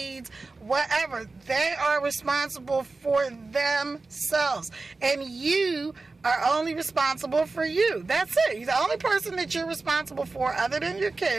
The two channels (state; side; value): quieter; left; 3.7 dB